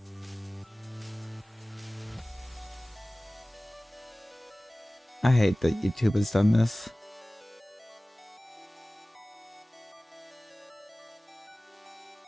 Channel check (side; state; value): both; normal; correlation 0.98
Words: I hate that YouTube has done this.